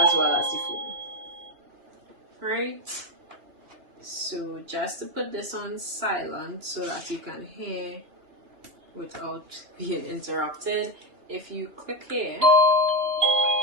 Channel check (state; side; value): late; left; 2.9 ms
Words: the phone. Right? So just to put this on silent so that you can hear without being interrupted, if you click here,